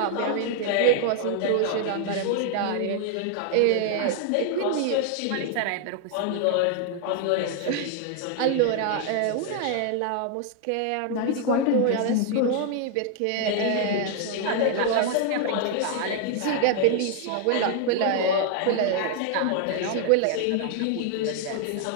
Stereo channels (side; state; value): both; different; correlation 0.00